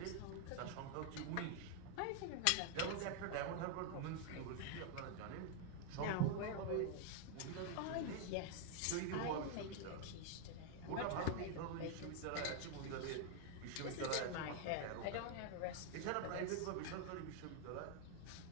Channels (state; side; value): different; both; correlation 0.00